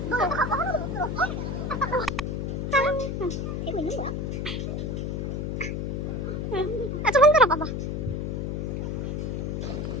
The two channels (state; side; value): noise; left; hum, 2 dB below the sound